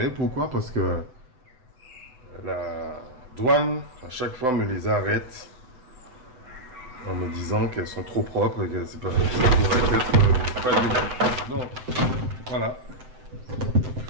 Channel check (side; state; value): left; late; 7.8 ms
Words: Pourquoi? Parce que la douane, à chaque fois, me les arrête en me disant qu'elles sont trop propres et que c'est pas, ça pourrait être pas du bon. Donc, voilà. Il